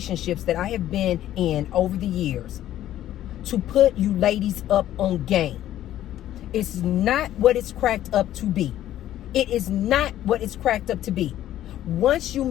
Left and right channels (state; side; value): quieter; right; 12.7 dB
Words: that I have been in over the years, to put you ladies up on game. It's not what it's cracked up to be. It is not what it's cracked up to be. Once you